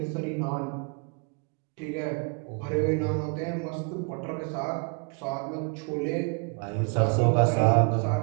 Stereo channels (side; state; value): left; quieter; 35.6 dB